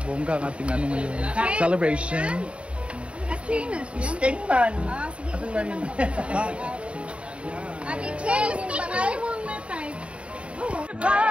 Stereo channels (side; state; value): left; late; 0.060 ms